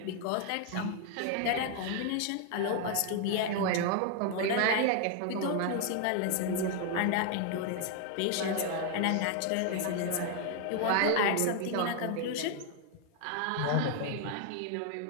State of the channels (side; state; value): both; different; correlation 0.00